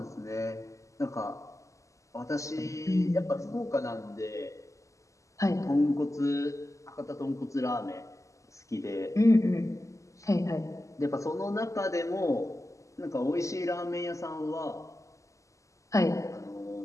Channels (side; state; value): right; late; 0.16 ms